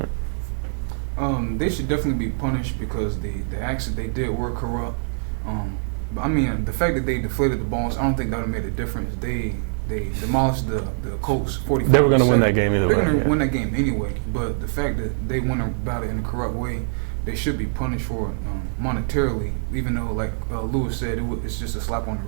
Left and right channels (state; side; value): silent; left; 63 dB below the other